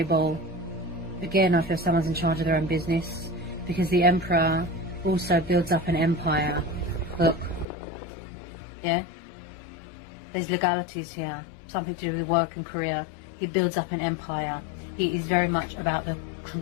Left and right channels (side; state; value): right; drops out; at 7.7 s